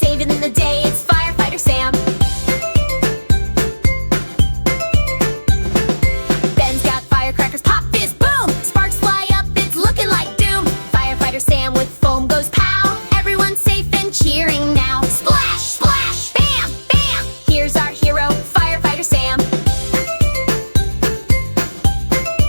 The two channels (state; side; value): inverted; both; correlation -1.00